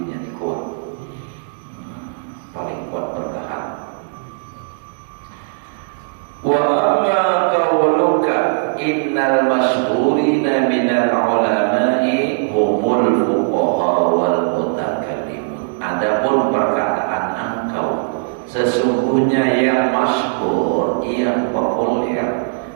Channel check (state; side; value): silent; left; digital silence